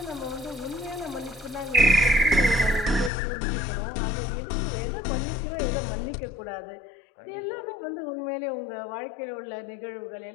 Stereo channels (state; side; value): drops out; right; at 3.1 s